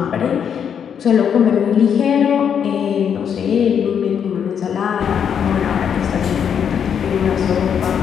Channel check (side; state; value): right; quieter; 7.9 dB